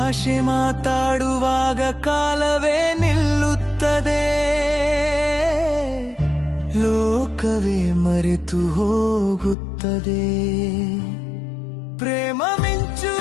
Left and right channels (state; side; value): drops out; right; at 9.6 s